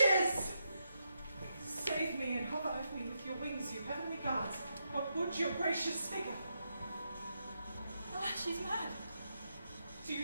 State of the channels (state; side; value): inverted; both; correlation -0.82